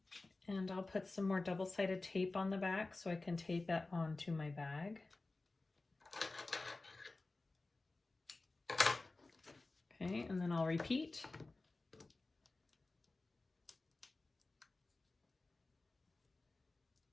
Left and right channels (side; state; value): right; quieter; 3.3 dB